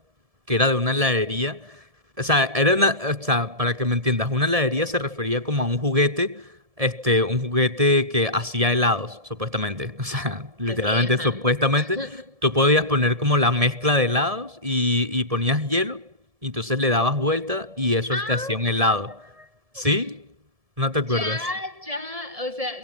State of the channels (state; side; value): late; left; 1.7 ms